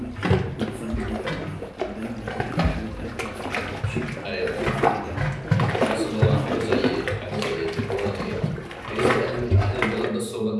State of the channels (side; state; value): both; identical; correlation 1.00